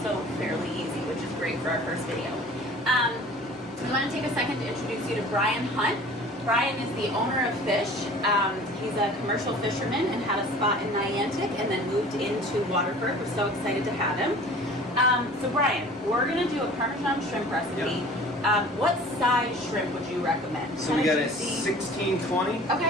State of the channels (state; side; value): normal; both; correlation 0.45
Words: fairly easy, which is great for our first video. We want to take a second to introduce you to Bryan Hunt. Bryan is the owner of Fish. He's a commercial fisherman and had a spot in Niantic and then moved into Waterford. We're so excited to have him. So Bryan, we're going to do a Parmesan shrimp recipe. Yep. What size shrimp would you recommend? So we got a 1620.